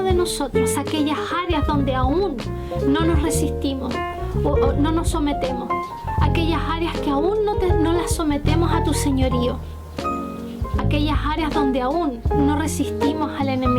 de nosotros aquellas áreas donde aún no nos resistimos o no nos sometemos, aquellas áreas que aún no las sometemos a tu señorío, aquellas áreas donde aún no resistimos al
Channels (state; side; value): identical; both; correlation 1.00